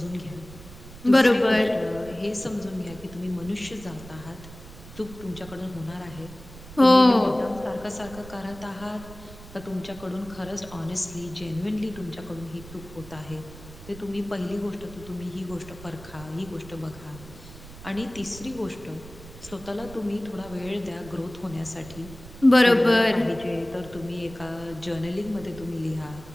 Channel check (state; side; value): noise; right; rumble, 16 dB below the sound